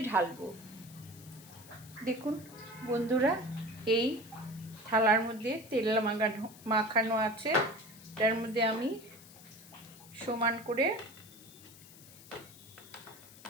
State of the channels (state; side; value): noise; left; hiss, 20 dB below the sound